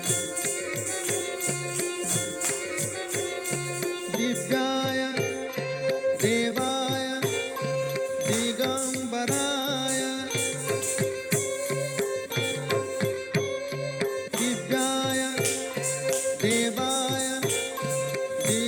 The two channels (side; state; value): both; identical; correlation 1.00